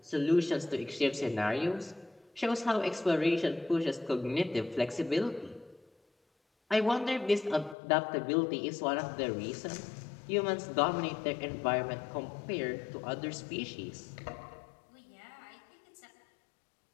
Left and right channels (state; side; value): drops out; right; at 7.8 s